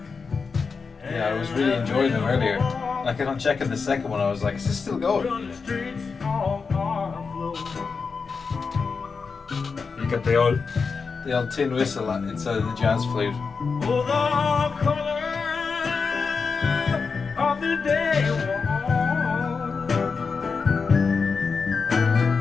Yeah, I was really enjoying them earlier. Like, on checking the second one, I was like, is this still going? You got the old tin whistle inside of the jazz flute. Oh, the color of the day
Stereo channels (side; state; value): right; quieter; 5.0 dB